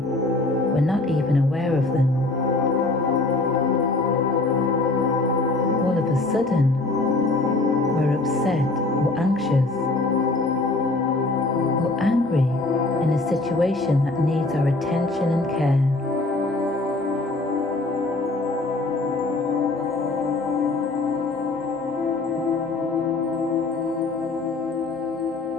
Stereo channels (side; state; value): right; quieter; 3.1 dB